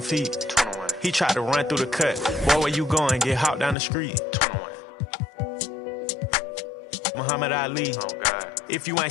Feet. 21. He tried to run through the cut. Boy, where you going? Get hopped down the street. 21. Muhammad Ali. Oh, God. If you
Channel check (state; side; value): drops out; right; at 3.8 s